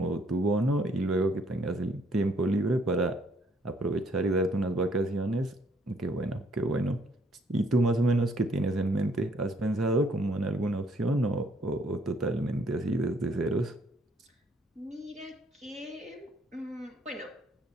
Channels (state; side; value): normal; both; correlation 0.66